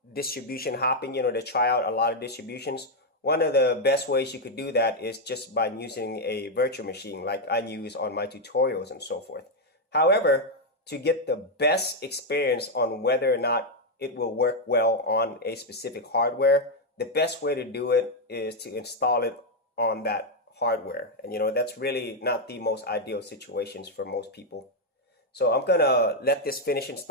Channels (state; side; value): normal; both; correlation 0.01